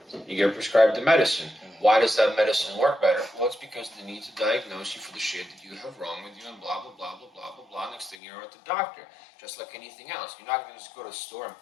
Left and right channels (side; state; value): right; drops out; at 8.2 s